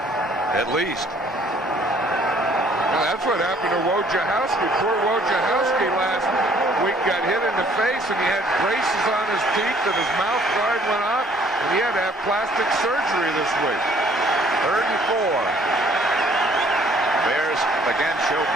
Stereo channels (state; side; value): normal; both; correlation 0.60